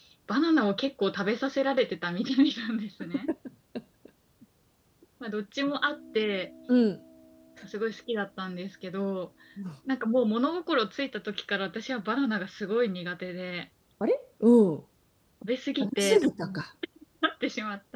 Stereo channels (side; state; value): both; identical; correlation 1.00